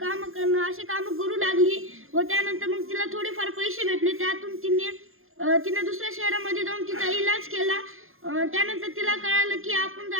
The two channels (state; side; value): late; left; 0.60 ms